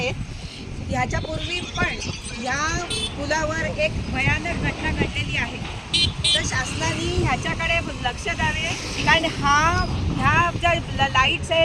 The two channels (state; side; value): identical; both; correlation 1.00